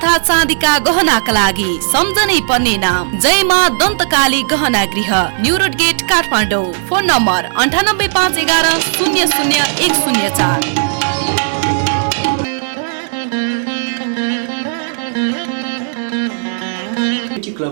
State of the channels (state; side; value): silent; left; digital silence